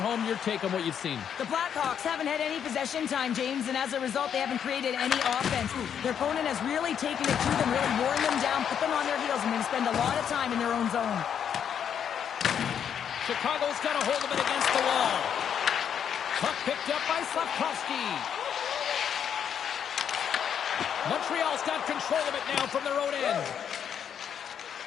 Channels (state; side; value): quieter; right; 8.4 dB